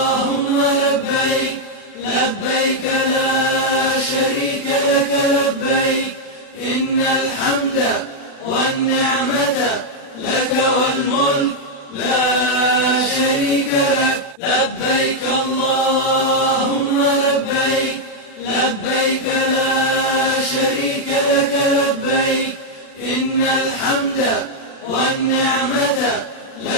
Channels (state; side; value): late; right; 36 ms